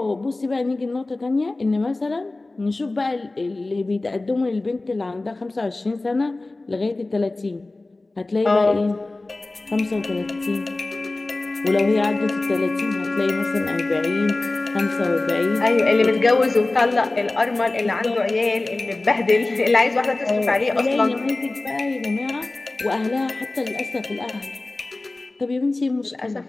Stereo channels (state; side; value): quieter; right; 3.0 dB